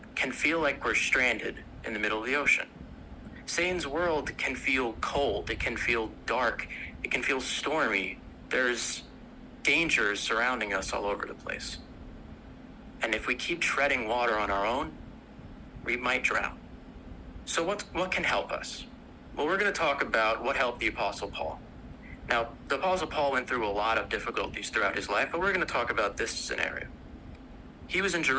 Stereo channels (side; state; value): both; identical; correlation 1.00